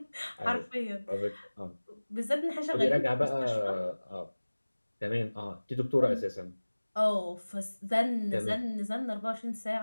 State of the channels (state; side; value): inverted; both; correlation -1.00